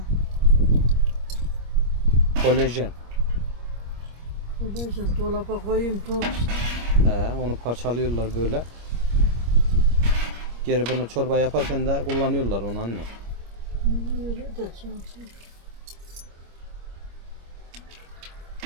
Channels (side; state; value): left; late; 25 ms